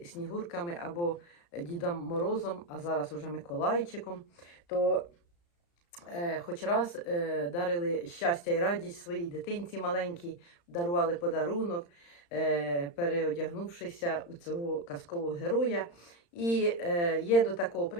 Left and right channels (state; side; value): late; right; 35 ms